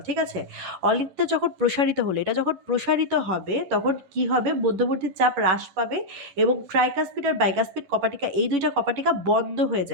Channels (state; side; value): late; left; 11 ms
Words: ঠিক আছে? অলিন্দে যখন প্রসারিত হলো, এটা যখন প্রসারিত হবে তখন কি হবে? মধ্যবর্তী চাপ হ্রাস পাবে এবং ট্রাইকাসপিড আর বাইকাসপিড কপাটিকা, এই দুইটা কপাটিকা বন্ধ হয়ে